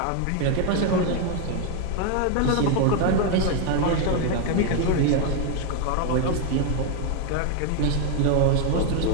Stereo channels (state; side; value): different; both; correlation 0.01